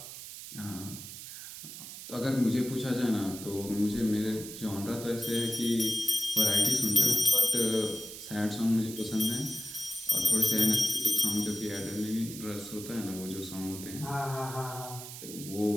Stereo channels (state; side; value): noise; right; hiss, 11 dB below the sound